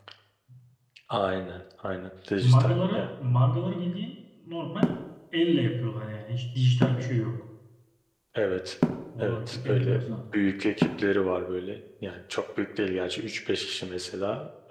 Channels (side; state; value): both; identical; correlation 1.00